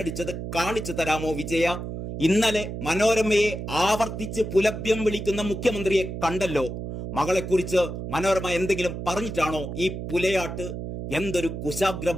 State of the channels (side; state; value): right; noise; hum, 6 dB below the sound